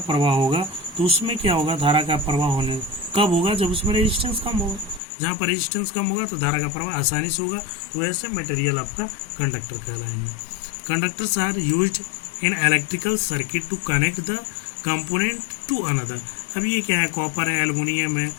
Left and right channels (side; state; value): right; drops out; at 5.0 s